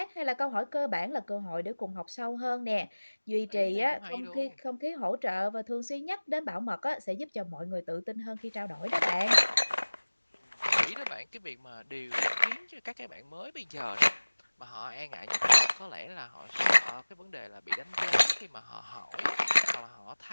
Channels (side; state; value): both; inverted; correlation -1.00